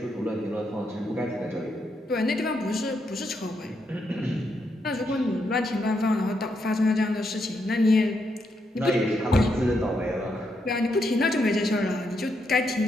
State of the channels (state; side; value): normal; both; correlation 0.80